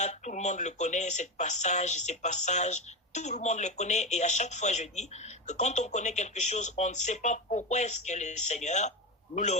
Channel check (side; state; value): both; normal; correlation 0.16